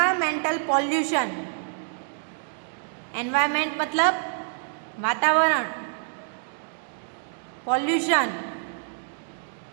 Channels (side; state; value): left; silent; digital silence